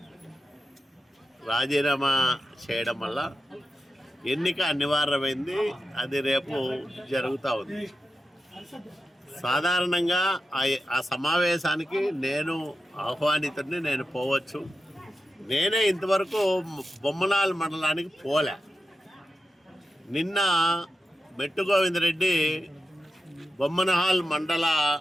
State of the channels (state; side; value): normal; both; correlation 0.90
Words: రాజీనామా చేయడం వల్ల ఎన్నిక అనివార్యమైంది. అది రేపు జరుగుతూ ఉంది. సాధారణంగా ఆ సమావేశానికి నేను ఆహ్వానితుడిని, నేను పోవచ్చు. నేనే ఇంతవరకు బొమ్మనాల్ మండలానికి పోలే. నిన్న మెట్టు గోవిందరెడ్డి బొమ్మనహాల్ మండల